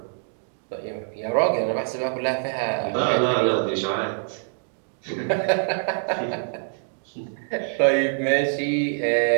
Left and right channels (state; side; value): silent; left; digital silence